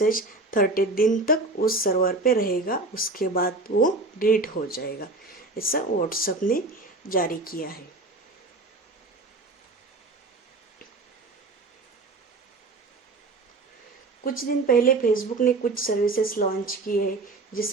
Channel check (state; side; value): quieter; left; 3.2 dB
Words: 30 दिन तक उस सर्वर पे रहेगा, उसके बाद वो डिलीट हो जाएगा। ऐसा व्हाट्सएप ने जारी किया है। कुछ दिन पहले फेसबुक ने कुछ सर्विसेज लॉन्च किए हैं